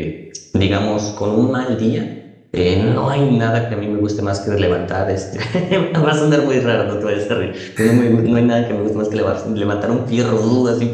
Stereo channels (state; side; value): identical; both; correlation 1.00